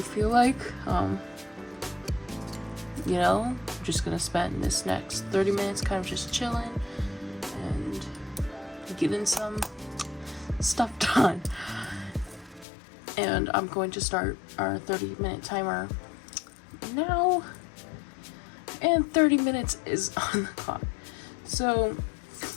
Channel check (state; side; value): drops out; right; at 12.7 s